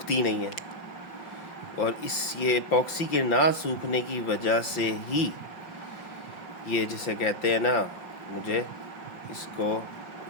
नहीं है, और ये एपॉक्सी के ना सूखने की वजह से ही ये जिसे कहते हैं ना, मुझे इसको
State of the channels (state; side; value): late; right; 5.8 ms